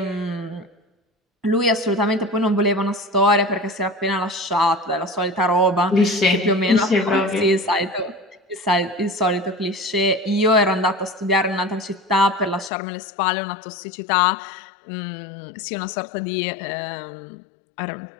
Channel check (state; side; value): drops out; right; at 12.7 s